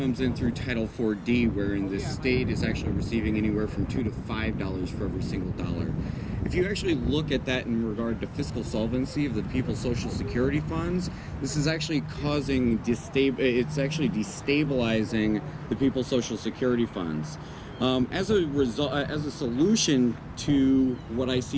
in through Title 4D, wherein the state is actually receiving anywhere from $2 to $5 for every single dollar. If you actually look at that in regard to fiscal solvency of the people's Social Security funds, this is actually it's actually destabilizing the people's Social Security funds. As a solution to what I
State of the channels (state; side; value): identical; both; correlation 1.00